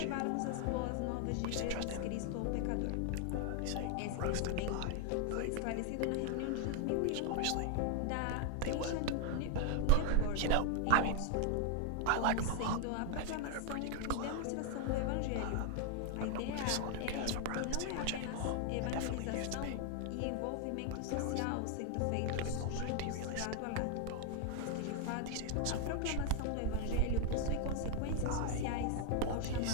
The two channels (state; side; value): different; both; correlation 0.00